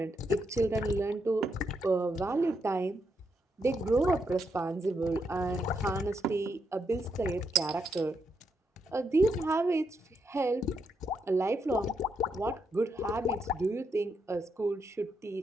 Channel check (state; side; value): normal; both; correlation 0.80